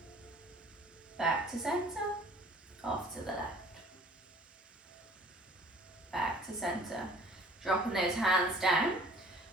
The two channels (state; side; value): normal; both; correlation 0.52